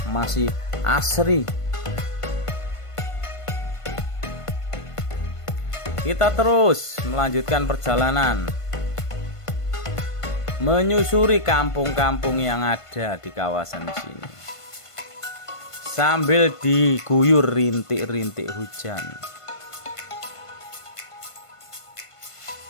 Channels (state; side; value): late; right; 1.5 ms